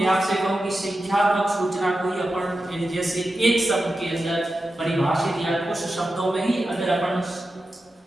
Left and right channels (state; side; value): normal; both; correlation 0.91